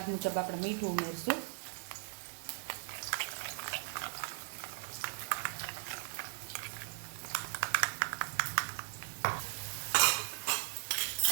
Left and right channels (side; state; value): left; silent; digital silence